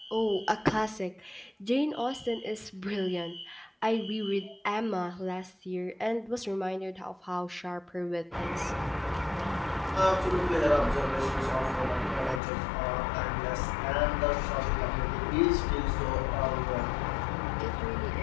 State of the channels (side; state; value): right; drops out; at 12.4 s